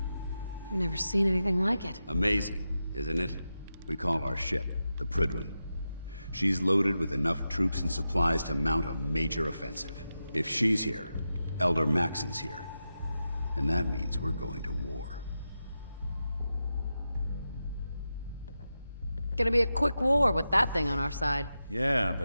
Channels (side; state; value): both; inverted; correlation -0.90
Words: I've never seen anything like it. Amazing, isn't it? We call our ship the Prydwen. She's loaded with enough troops and supplies to mount a major offensive. If she's here, Elder Maxon's here. And that means we're going to war. Gonna be a quick war with that thing on our side. Yeah,